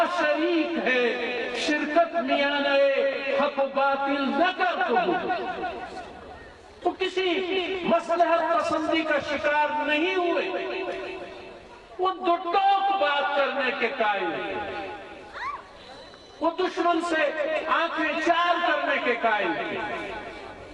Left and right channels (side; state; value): both; identical; correlation 1.00